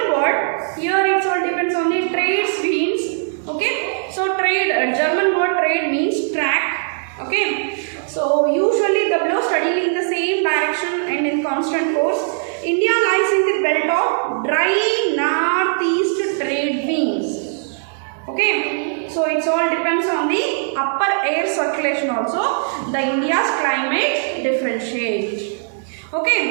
word, here it all depends on the trade means. Okay, so trade, German word trade means track. Okay, so So usually the blow steadily in the same direction and in constant course. India lies in the belt of dry northeast trade winds. Okay, so it all depends on the upper air circulation also. The India's climate differentiates.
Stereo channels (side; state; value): left; silent; 66 dB below the other